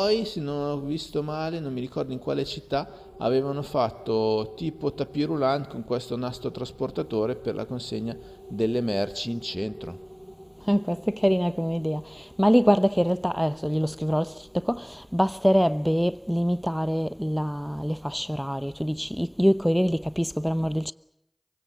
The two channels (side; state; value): both; identical; correlation 1.00